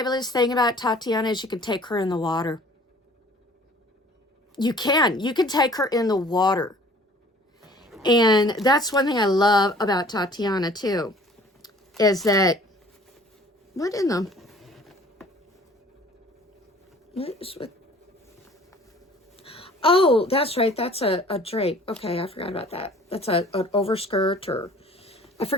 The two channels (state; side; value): normal; both; correlation 0.51